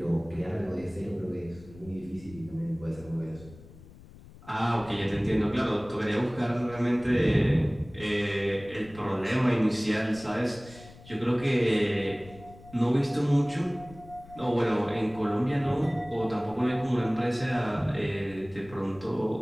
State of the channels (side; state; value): left; noise; rumble, 20 dB below the sound